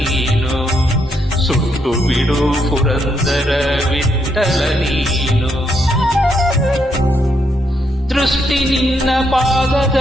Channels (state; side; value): normal; both; correlation 0.77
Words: ಸುಟ್ಟು ಬಿಡು ಪುರಂದರ ವಿಠಲ ನೀನು ದೃಷ್ಟಿ ನಿನ್ನ